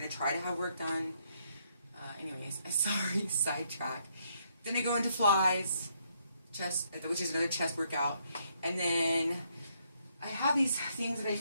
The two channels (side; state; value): both; inverted; correlation -0.73